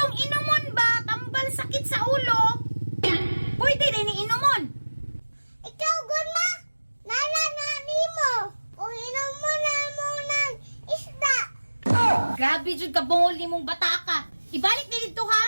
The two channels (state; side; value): inverted; both; correlation -1.00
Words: inumon ba, tambal sakit sa ulo? Pwede din inumon. Ikaw, Gunma, nala na nimo. Kung inom mo na mo ng isda. Grabe jud ka bungol nimong bata ka. Ibalik ni dito